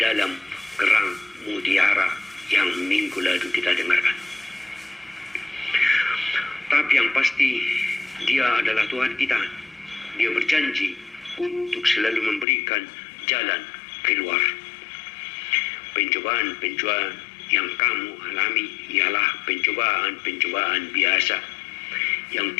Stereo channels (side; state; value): right; drops out; at 12.5 s